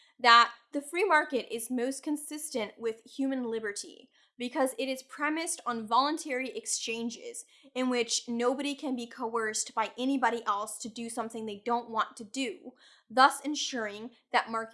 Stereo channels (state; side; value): identical; both; correlation 1.00